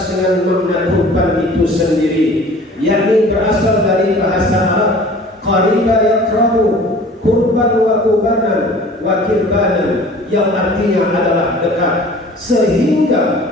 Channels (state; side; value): normal; both; correlation 0.46